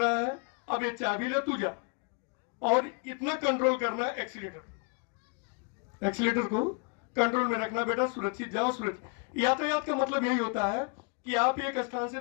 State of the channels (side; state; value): right; quieter; 33.9 dB